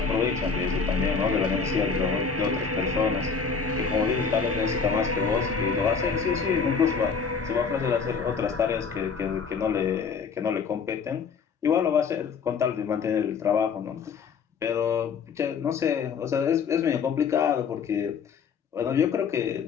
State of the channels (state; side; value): quieter; right; 5.8 dB